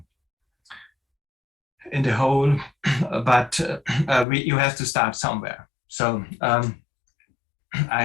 in the whole, but you have to start somewhere. So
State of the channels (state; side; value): drops out; right; at 4.2 s